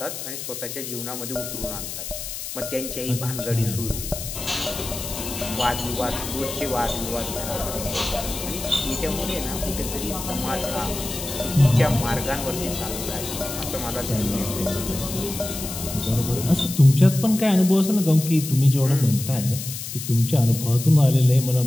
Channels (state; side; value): noise; left; hiss, 8 dB below the sound